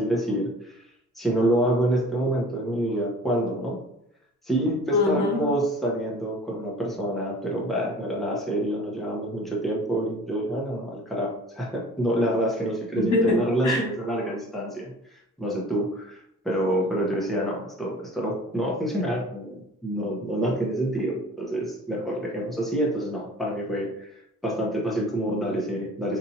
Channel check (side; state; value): both; normal; correlation 0.46